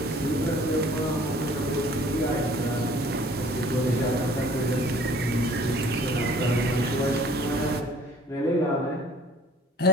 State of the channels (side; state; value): both; normal; correlation 0.54